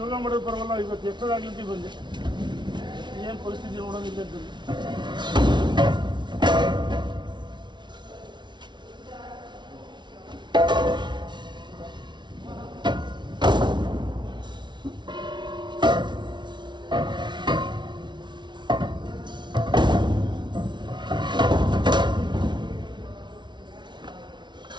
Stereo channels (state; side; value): late; left; 0.22 ms